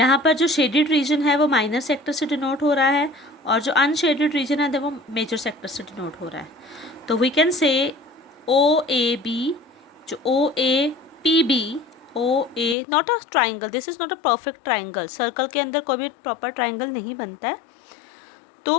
पर जो शेडेड रीजन है वो माइनर सेक्टर से डिनोट हो रहा है, और जो अनशेडेड रीजन है वो मेजर सेक्टर से डिनोट हो रहा है. तो वी कैन से OAB, जो OAPB, OA not a triangle, this is not a perfect triangle. Circle के अंदर कोई भी प्रॉपर ट्राइंगल नहीं बनता है.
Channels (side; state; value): right; drops out; at 12.8 s